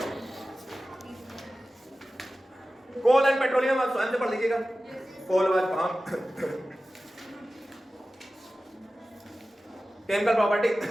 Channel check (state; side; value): normal; both; correlation 0.95